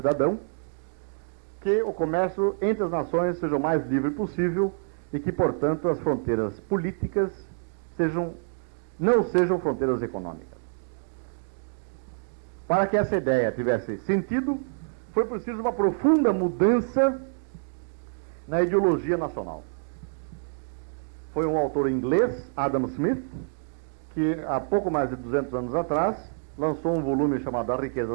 que o comércio entre as nações seja o mais livre possível e que, portanto, as fronteiras políticas não sejam fronteiras econômicas. Para que essa ideia tivesse sentido, foi preciso uma profunda mudança na ideologia nacional. foi um autor inglês, Adam Smith, que há pouco mais de 200 anos atrás lançou um volume chamado A Riqueza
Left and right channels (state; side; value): silent; left; digital silence